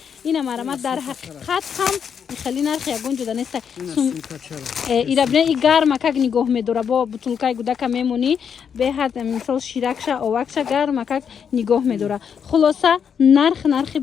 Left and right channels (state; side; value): quieter; right; 7.3 dB